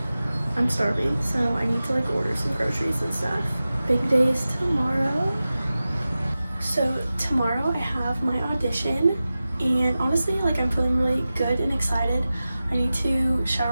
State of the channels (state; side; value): inverted; both; correlation -0.95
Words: I'm starving, so I need to like order some groceries and stuff. Big day is tomorrow. So tomorrow I have my audition, and honestly, like I'm feeling really good and excited. I need to